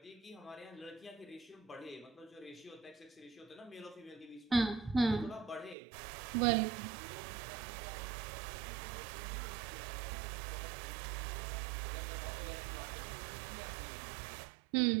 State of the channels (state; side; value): drops out; left; at 5.8 s